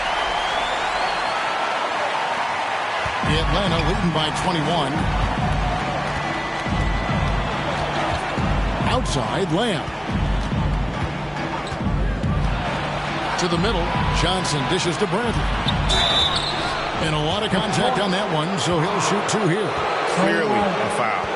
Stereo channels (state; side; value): identical; both; correlation 1.00